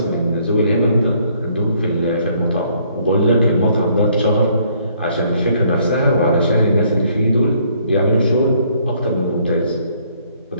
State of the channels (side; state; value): both; inverted; correlation -0.65